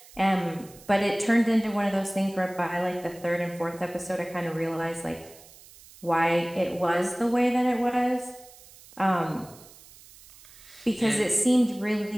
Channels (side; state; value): right; noise; hiss, 22 dB below the sound